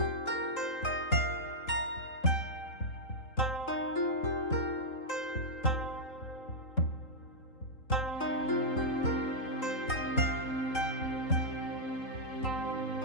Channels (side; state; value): right; late; 3.8 ms